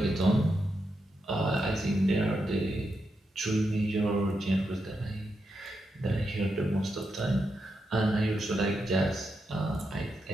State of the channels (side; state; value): both; normal; correlation 0.85